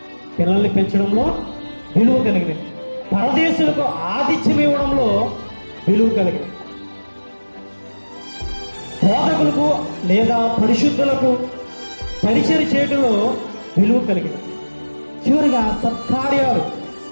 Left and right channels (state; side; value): inverted; both; correlation -1.00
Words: పిల్లల్ని పెంచడంలో విలువ కలిగినది. పరదేశులకు ఆతిథ్యం ఇవ్వడంలో విలువ కలిగినది. బోధకులకు లేదా పరిశుద్ధులకు పరిచయం చేయడంలో విలువ కలిగినది. చివరిగా సత్కార్యాలు